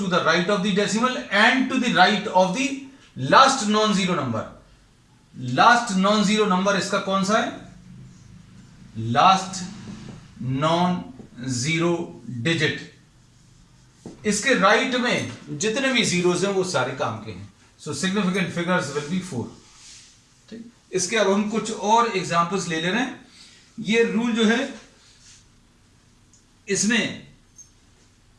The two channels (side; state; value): both; identical; correlation 1.00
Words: the right of the decimal and to the right of the last non zero number. Last non zero number इसका कौन सा है, लास्ट नॉन जीरो डिजिट, इसके राइट में जितने भी जीरोस हैं वो सारे काम के हैं। सो सिग्निफिकेंट फिगर्स विल बी 4। ठीक, इसके अब हम कुछ और एग्जांपल्स ले ले रहे हैं। ये रूल जो है इसमें